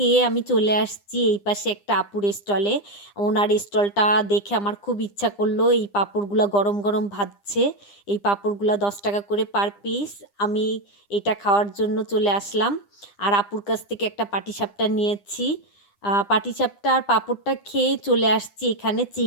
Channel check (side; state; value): right; late; 9.9 ms